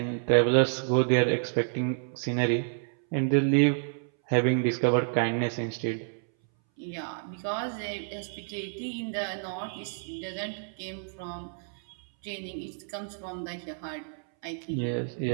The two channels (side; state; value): left; silent; 58 dB below the other